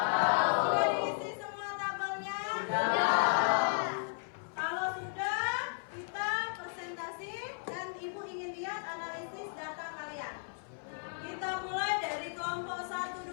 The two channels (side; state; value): right; silent; 55 dB below the other